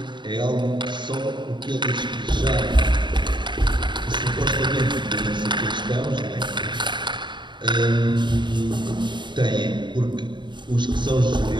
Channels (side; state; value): left; late; 0.22 ms